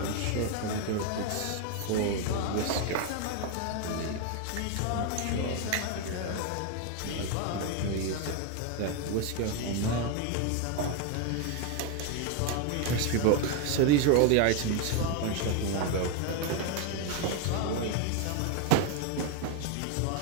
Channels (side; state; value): both; different; correlation 0.01